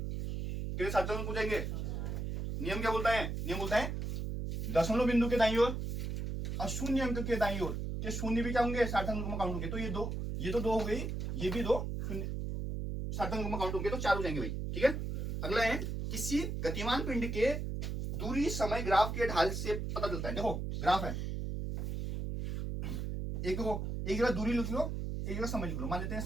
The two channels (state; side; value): noise; right; hum, 3 dB below the sound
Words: कितने सार्थक अंक हो जाएंगे? नियम क्या बोलता है? नियम बोलता है दशमलव बिंदु के दाईं ओर और शून्य अंक के दाईं ओर के शून्य भी क्या होंगे, सार्थक अंक में काउंट होंगे। तो ये तो दो हो गई, ये भी दो शून्य सार्थक अंक में काउंट होंगे, तो चार हो जाएंगे भाई। ठीक है, अगला है, किसी गतिमान पिंड के दूरी समय ग्राफ के ढाल से पता चलता है। देखो ग्राफ है, एक जगह दूरी लिख लो, एक जगह समय लिख लो। मान लेते हैं